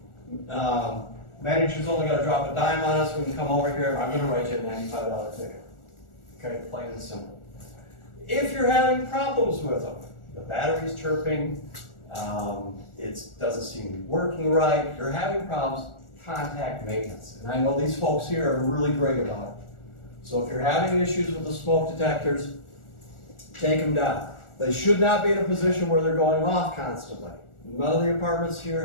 manager's only got to drop a dime on us. We can come over here. I'm going to write you a $95 ticket. Okay, plain and simple. If you're having problems with them, the battery's chirping, it doesn't seem to be working right, you're having problems, contact maintenance. And I know these folks here are really great about it. So if you're having issues with the smoke detectors, take them down. They should not be in a position where they're going off constantly. None of the apartments here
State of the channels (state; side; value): late; right; 1.4 ms